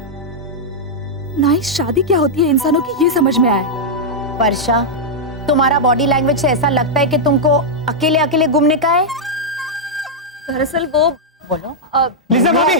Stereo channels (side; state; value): both; normal; correlation -0.06